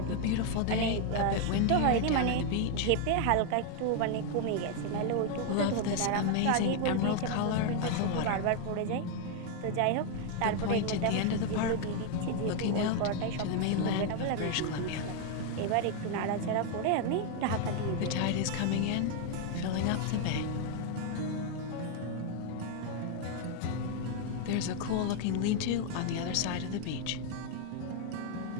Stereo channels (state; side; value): different; both; correlation 0.00